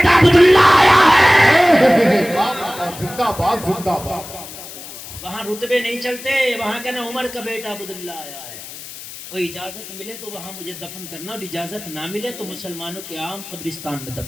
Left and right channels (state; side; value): noise; left; hiss, 13 dB below the sound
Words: عبداللہ آیا ہے۔ زندہ باد زندہ باد۔ وہاں رتبے نہیں چلتے، وہاں کہنا عمر کا بیٹا عبداللہ آیا ہے۔ اور اجازت ملے تو وہاں مجھے دفن کرنا، اور اجازت نہ ملے تو مسلمانوں کے عام قبرستان میں